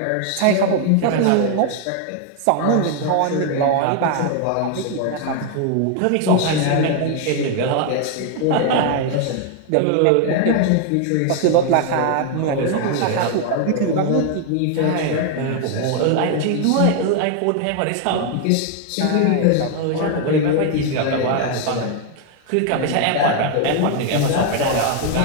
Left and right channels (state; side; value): different; both; correlation 0.00